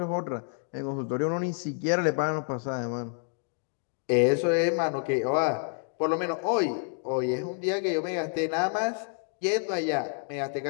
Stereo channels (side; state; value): right; silent; 59 dB below the other